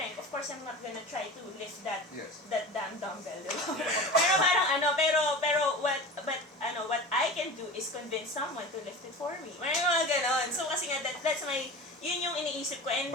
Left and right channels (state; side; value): normal; both; correlation 0.33